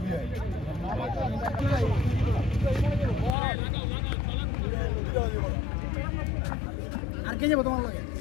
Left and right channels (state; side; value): drops out; right; at 3.4 s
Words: আর কে যাবো তোমার লাগে